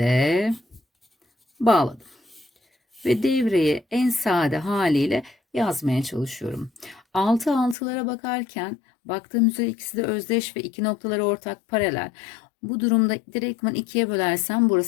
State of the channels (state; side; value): drops out; right; at 7.8 s